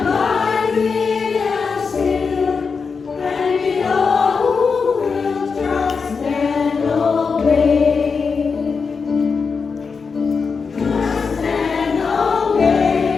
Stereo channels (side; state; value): right; quieter; 5.2 dB